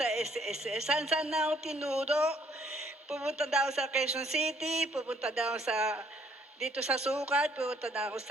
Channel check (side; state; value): both; normal; correlation 0.64